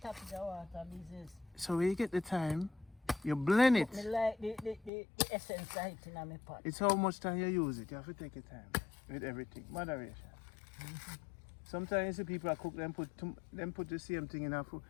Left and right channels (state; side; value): drops out; right; at 4.9 s